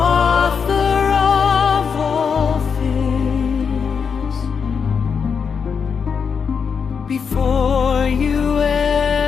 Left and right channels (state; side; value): quieter; right; 6.2 dB